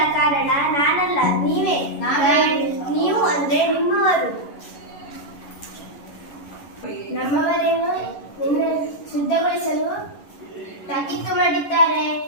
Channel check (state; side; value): late; right; 11 ms